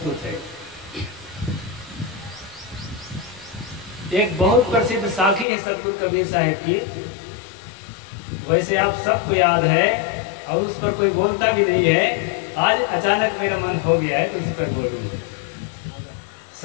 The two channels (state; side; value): drops out; right; at 5.5 s